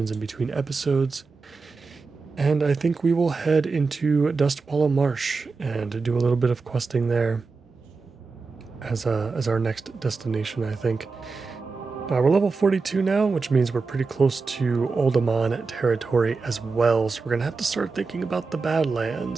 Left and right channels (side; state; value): left; quieter; 4.4 dB